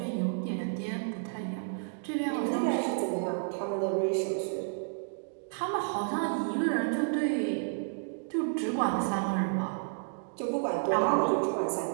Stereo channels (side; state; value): left; silent; digital silence